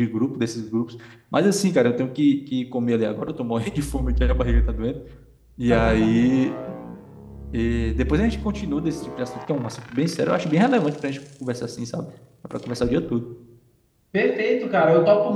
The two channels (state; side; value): identical; both; correlation 1.00